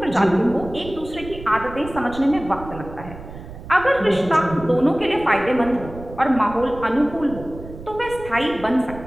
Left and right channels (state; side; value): noise; right; rumble, 14 dB below the sound